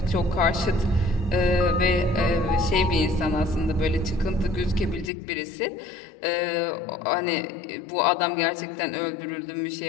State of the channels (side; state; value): right; drops out; at 5.1 s